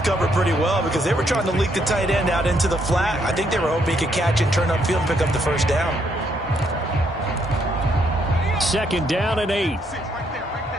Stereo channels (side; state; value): both; normal; correlation 0.73